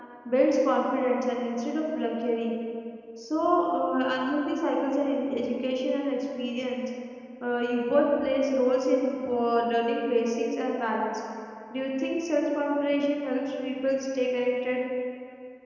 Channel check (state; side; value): identical; both; correlation 1.00